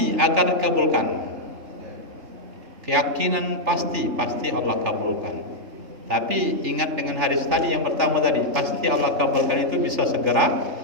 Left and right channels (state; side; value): late; left; 3.4 ms